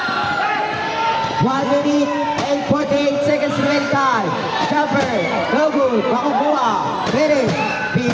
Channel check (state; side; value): identical; both; correlation 1.00